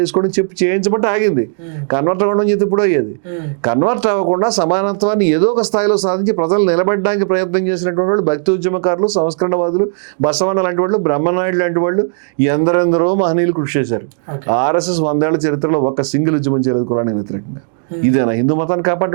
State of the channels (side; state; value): left; silent; 65 dB below the other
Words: చెప్పి చేయించబట్టి ఆగింది. కన్వర్ట్ అవ్వడం చేతి ఇప్పుడు అయ్యేది. కన్వర్ట్ అవ్వకుండా సమానత్వాన్ని ఏదో ఒక స్థాయిలో సాధించి ప్రజలు నిలబెట్టడానికి ప్రయత్నం చేసినటువంటి వాళ్ళు భక్తి ఉద్యమకారులు, సంస్కరణవాదులు, బసవన్న లాంటి వాళ్ళు, బ్రహ్మనాయుడు లాంటి వాళ్ళు, ఎందరెందరో మహనీయులు కృషి చేశారు. ఆర్ఎస్ఎస్ 100 ఏళ్ల చరిత్రలో ఒక్క సింగిల్ ఉద్యమం చేయలేదు కులానికి వ్యతిరేకంగా. ఇదేనా హిందూ మతాన్ని